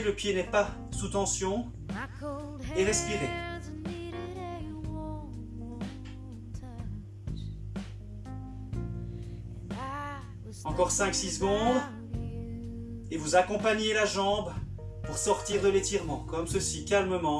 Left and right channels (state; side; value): identical; both; correlation 1.00